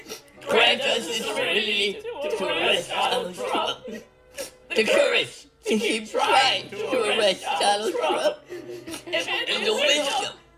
grant us the serenity to arrest Donald Trump. The courage to keep trying to arrest Donald Trump. And the wisdom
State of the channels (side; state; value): both; identical; correlation 1.00